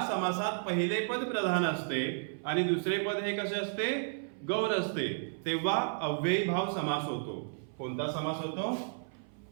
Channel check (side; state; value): left; silent; 56 dB below the other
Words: समासात पहिले पद प्रधान असते आणि दुसरे पद हे कसे असते? गौण असते, तेव्हा अव्ययीभाव समास होतो. कोणता समास होतो?